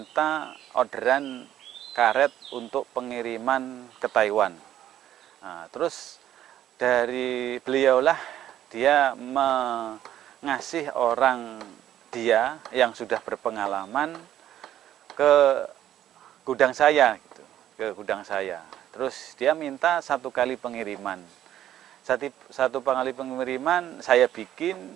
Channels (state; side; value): quieter; left; 11.7 dB